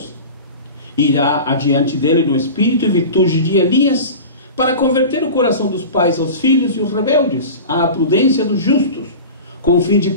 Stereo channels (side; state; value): both; inverted; correlation -0.33